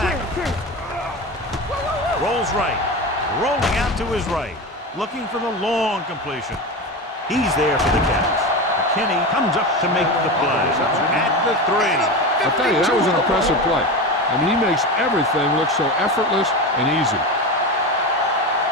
Rolls right. Rolling out to his right. Looking for the long completion. He's there for the catch. McKinney comes up to make the play. At the 3. I'll tell you, that was an impressive play. I mean, he makes everything look so effortless and easy.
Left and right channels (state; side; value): normal; both; correlation 0.23